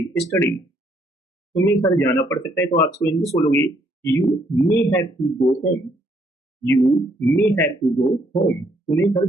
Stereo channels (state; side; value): normal; both; correlation 0.69